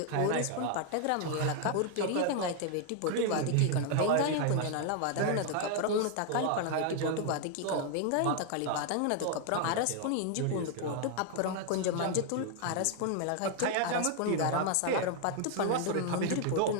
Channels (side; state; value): both; different; correlation 0.00